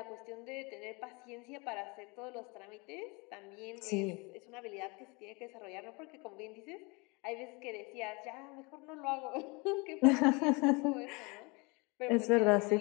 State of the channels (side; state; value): right; quieter; 28.2 dB